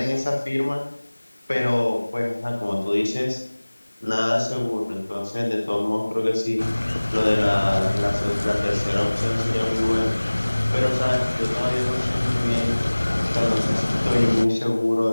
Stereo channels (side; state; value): both; inverted; correlation -1.00